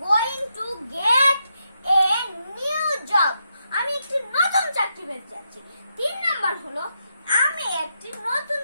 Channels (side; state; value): both; inverted; correlation -0.82